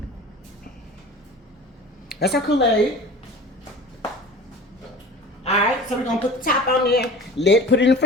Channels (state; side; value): normal; both; correlation 0.39